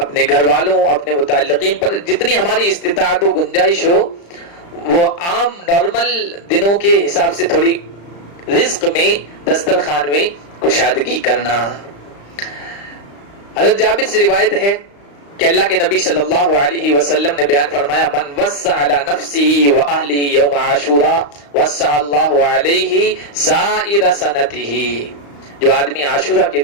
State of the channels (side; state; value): right; late; 35 ms